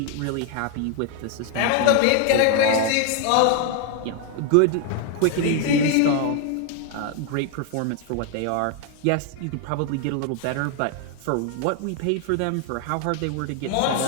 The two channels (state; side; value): different; both; correlation 0.01